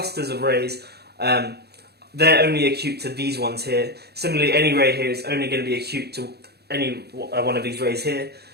of rays, they're only acute to these ones here. Similarly, any ray here is only going to be acute to any one of these rays here.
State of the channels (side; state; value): left; late; 0.47 ms